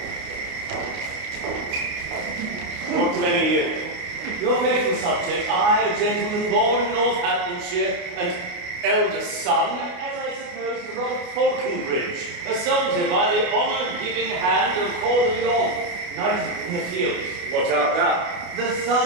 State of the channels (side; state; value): left; late; 29 ms